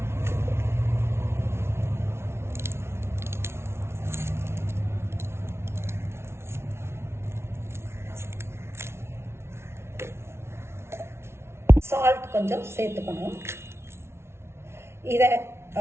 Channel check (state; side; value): late; left; 0.12 ms